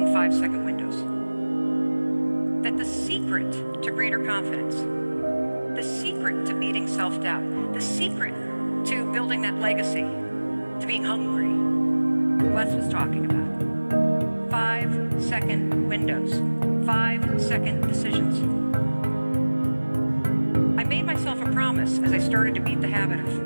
5-second windows. That the secret to greater confidence, the secret to beating self-doubt, the secret to building that legacy, to being hungry, Wes was talking about. 5-second windows, 5-second decisions. I made myself a promise as I started to beat the habit of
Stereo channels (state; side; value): inverted; both; correlation -1.00